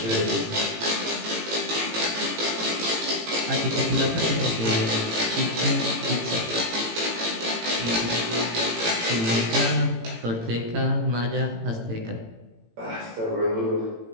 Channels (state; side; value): late; left; 18 ms